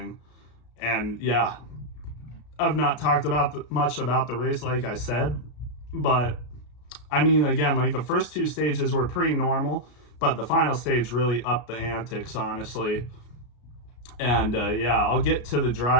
And yeah, I've not talked much about the race, like I said, but I mean, again, like the first 2 stages were pretty normal, but the final stage really upped the antics, honestly. And yeah, I'll get to the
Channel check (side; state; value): right; late; 33 ms